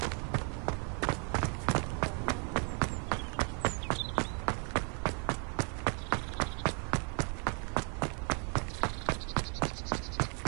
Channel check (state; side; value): quieter; left; 39.6 dB